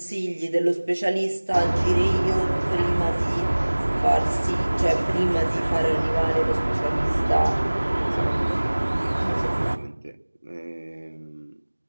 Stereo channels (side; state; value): both; inverted; correlation -1.00